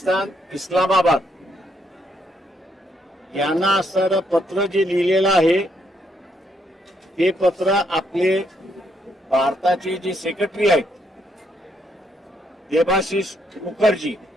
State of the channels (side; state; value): both; normal; correlation 0.75